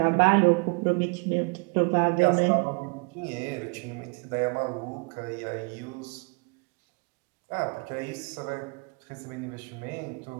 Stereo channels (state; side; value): quieter; left; 32.7 dB